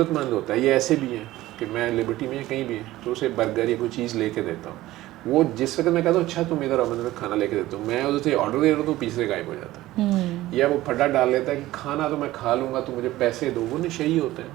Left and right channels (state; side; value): quieter; left; 16.4 dB